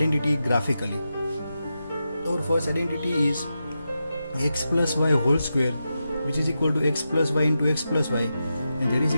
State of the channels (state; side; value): inverted; both; correlation -0.89